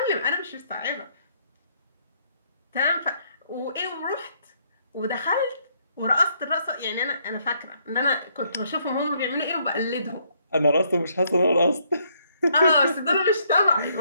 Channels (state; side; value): inverted; both; correlation -0.70